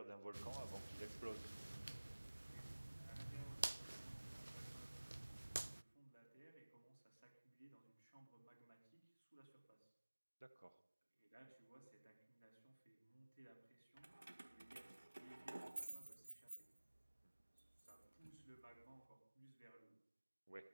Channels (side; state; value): both; inverted; correlation -1.00